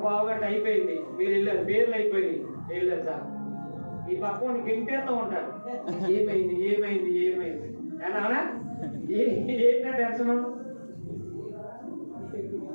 గంట అయిపోయింది, మీరు వెళ్ళారు, పేర్లు అయిపోయింది, వెళ్ళారు సార్, ఈ పక్కని గెంటేస్తూ ఉంటారు, ఏమైంది ఏమైంది ఏమైంది అని. అవునా? ఏంటంటే టెన్షన్?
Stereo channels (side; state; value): both; inverted; correlation -1.00